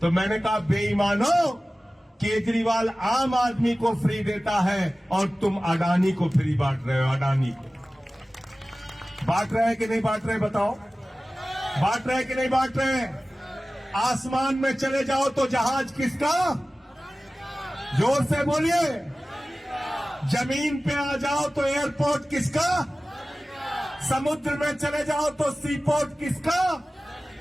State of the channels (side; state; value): both; normal; correlation 0.97